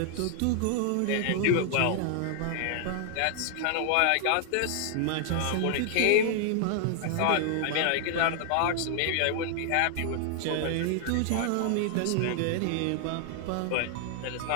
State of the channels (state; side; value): different; both; correlation 0.00